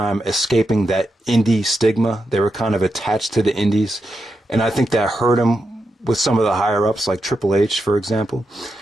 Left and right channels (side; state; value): both; normal; correlation 0.86